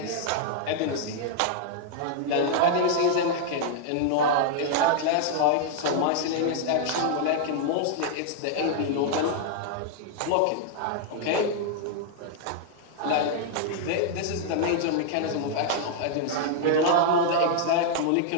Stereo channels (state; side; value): different; both; correlation -0.01